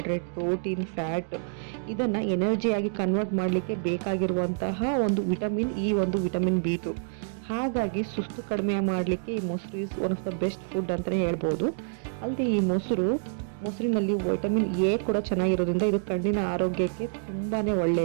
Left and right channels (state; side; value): silent; left; digital silence